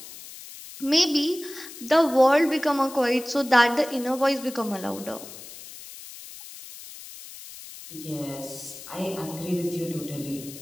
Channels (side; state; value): left; noise; hiss, 15 dB below the sound